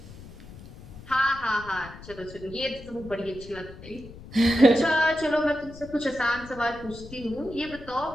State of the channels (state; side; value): noise; left; rumble, 16 dB below the sound